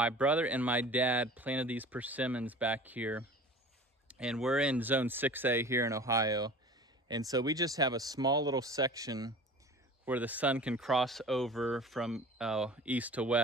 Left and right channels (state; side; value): normal; both; correlation 0.40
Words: brother and my dad planted these persimmons back here, and we're in zone 6A here in Ohio. And so we just have a small little section where the sun can cross over from east to